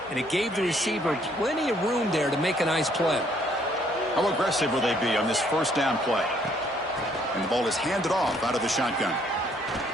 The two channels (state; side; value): normal; both; correlation 0.66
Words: and it gave the receiver plenty of room there to make a nice play. How aggressive will they be on this first down play? And the ball is handed off out of the shotgun.